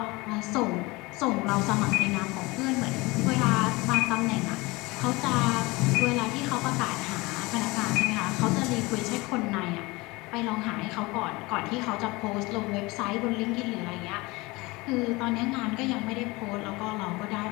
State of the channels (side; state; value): right; quieter; 23.2 dB